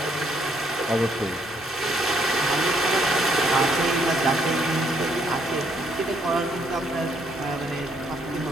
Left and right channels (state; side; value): normal; both; correlation 0.70